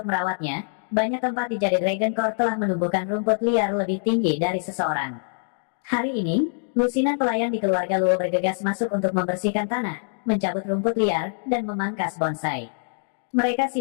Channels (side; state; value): right; silent; digital silence